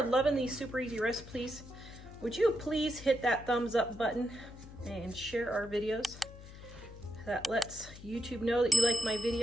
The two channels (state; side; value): noise; left; hum, 16 dB below the sound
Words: loving these super easy recipes, would you please hit that thumbs up button and share our videos? That lets YouTube know that you like my